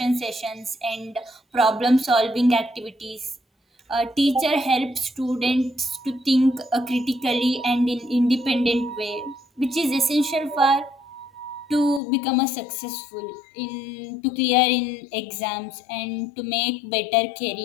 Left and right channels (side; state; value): right; drops out; at 12.0 s